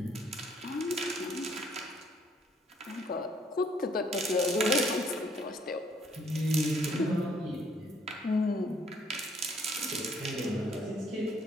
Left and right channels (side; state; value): both; normal; correlation 0.64